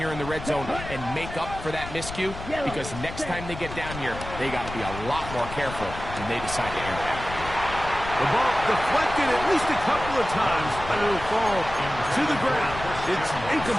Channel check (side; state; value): left; noise; rumble, 10 dB below the sound